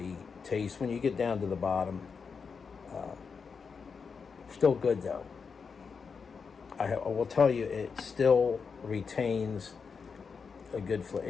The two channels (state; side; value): quieter; right; 5.6 dB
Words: taste. When you get down to the bottom, still good though. I will tell you, it still retains a good flavor.